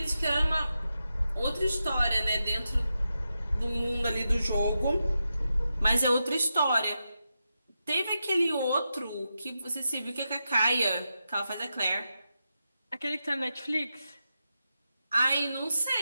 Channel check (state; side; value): inverted; both; correlation -0.88